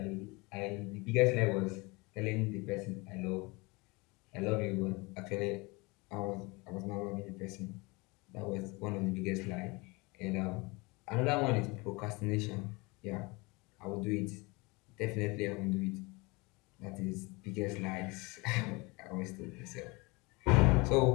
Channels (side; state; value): right; quieter; 25.8 dB